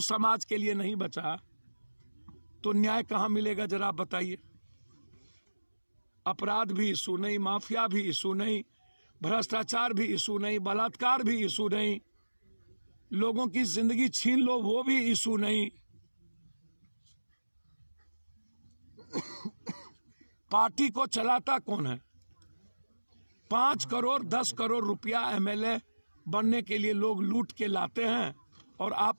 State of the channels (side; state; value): both; inverted; correlation -1.00